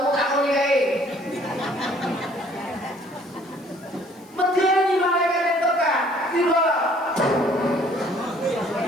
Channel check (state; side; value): noise; left; hiss, 28 dB below the sound